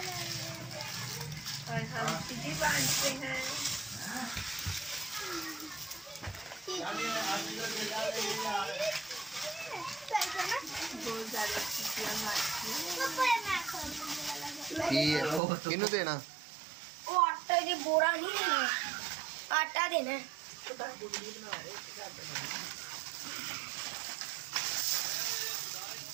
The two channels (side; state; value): left; drops out; at 15.4 s